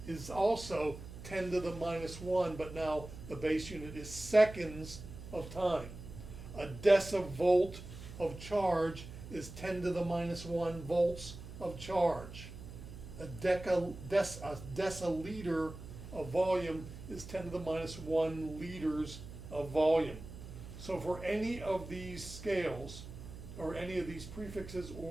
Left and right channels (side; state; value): right; noise; hum, 13 dB below the sound